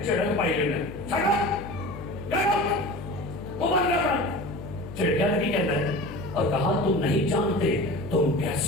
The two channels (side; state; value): left; noise; hum, 12 dB below the sound